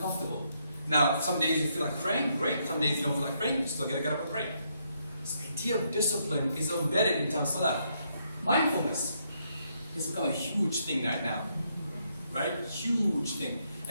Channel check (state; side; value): inverted; both; correlation -0.76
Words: Now, some days you feel like praying, great. Some days you don't feel like praying, you still got to get up and pray. So the idea of discipline is embedded in Salah. Mindfulness has become a huge thing right now, right? Huge thing.